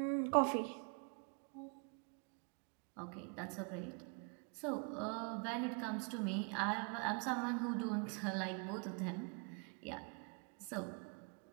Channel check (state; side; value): quieter; left; 37.2 dB